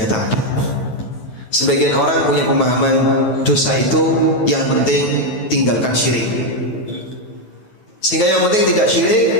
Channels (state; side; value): late; right; 9.3 ms